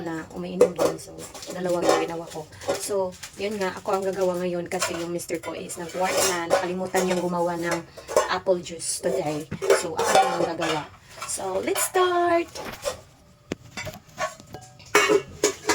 na umiinom din. So, dalawang yung ginawa ko. So, yun nga, ako ang gagawa ngayon kasi yung mister ko is nag-work na nakalimutan niyang gumawa ng apple juice today. So, ako ang gagawa. So, let's start!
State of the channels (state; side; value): identical; both; correlation 1.00